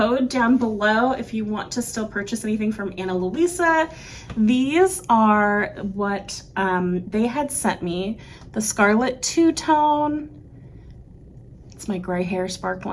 down below if you want to still purchase anything from Ana Luisa. These are what they had sent me. The Scarlet Two-Tone. It's my gray hair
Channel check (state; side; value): identical; both; correlation 1.00